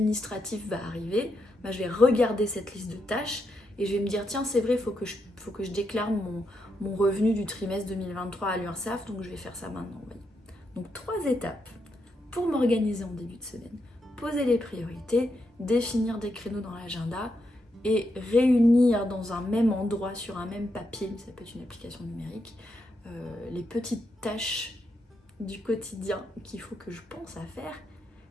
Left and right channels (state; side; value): normal; both; correlation 0.82